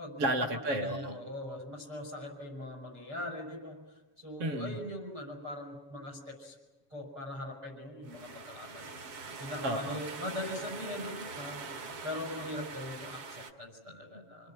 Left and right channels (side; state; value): left; late; 7.2 ms